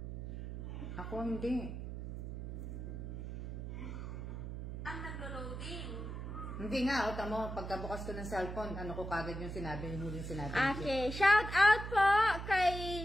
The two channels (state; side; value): noise; right; hum, 7 dB below the sound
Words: Ako hindi. Ang naglo-loading. Hindi nga, o tamo, pagkabukas ko ng cellphone, ano ko kagad yung sinabi, yung huling sinabi. Okay, shout out po